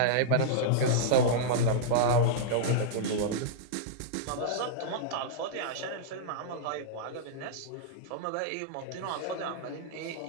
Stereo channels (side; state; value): both; different; correlation -0.02